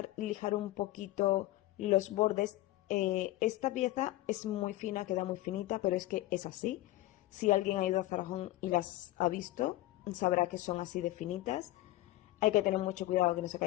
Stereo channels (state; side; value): quieter; right; 16.7 dB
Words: lijar un poquito los bordes. Esta pieza es muy fina, queda muy finita, pero es que es así. Si alguien ha ido a Zara Home y las ha visto, sabrá que son así de finitas. Hay que tener mucho cuidado que no se